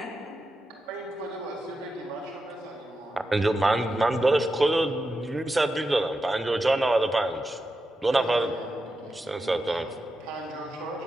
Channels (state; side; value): normal; both; correlation 0.89